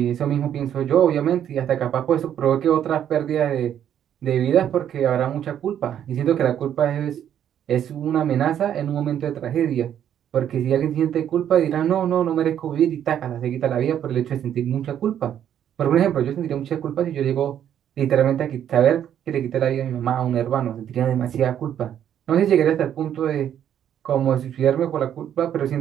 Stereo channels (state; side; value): quieter; left; 9.9 dB